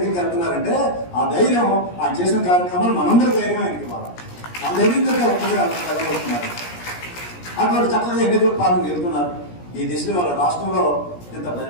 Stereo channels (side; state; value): right; late; 17 ms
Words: వెళ్తున్నారంటే ఆ ధైర్యం ఆ చేసిన కార్యక్రమాలు మనందరూ ధైర్యం ఆయనకి ఇవ్వాలి. మన ధైర్యంతో ఒక్కరిగా కలగలుగుతున్నారు. అటువంటి చక్కగా ఎన్నికల పాలన వెళ్తున్నారు. ఈ దిశలో వాళ్ళ రాష్ట్రంలో ఇంత